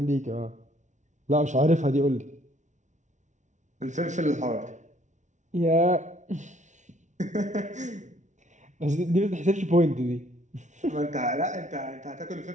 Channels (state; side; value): late; left; 0.35 ms